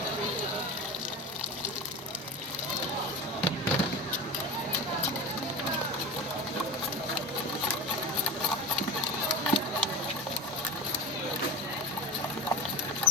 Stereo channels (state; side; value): normal; both; correlation 0.29